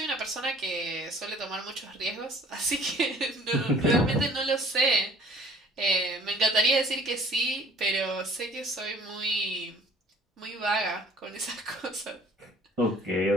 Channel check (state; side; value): normal; both; correlation 0.52